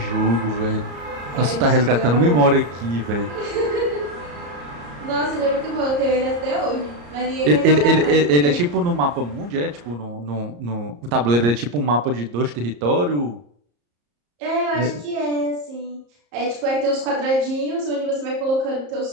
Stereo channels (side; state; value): left; late; 34 ms